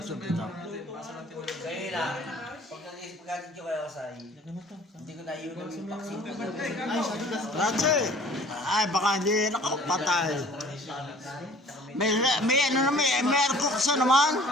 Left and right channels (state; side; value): normal; both; correlation 0.50